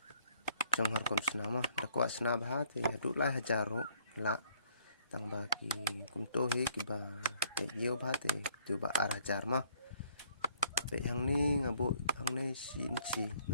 trong har kom sna mah dakwa sna bha te hadu lai hajaru la tang bagi kum to he kiba te yo bha te tu ba ar hajar mah pe hang ni ngabu hang ne sin chi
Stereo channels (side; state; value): both; inverted; correlation -0.64